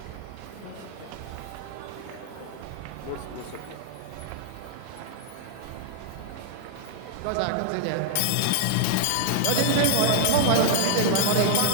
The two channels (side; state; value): both; different; correlation 0.00